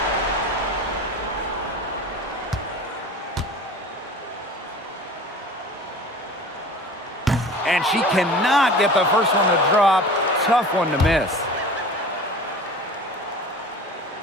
And she cannot get the first one to drop. Tough one to miss.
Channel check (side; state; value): both; normal; correlation 0.39